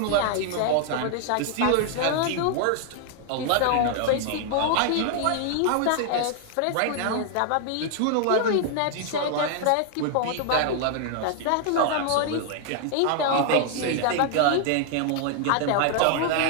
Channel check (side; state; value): both; different; correlation 0.00